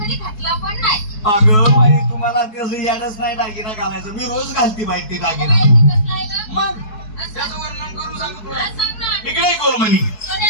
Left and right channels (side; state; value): right; late; 4.7 ms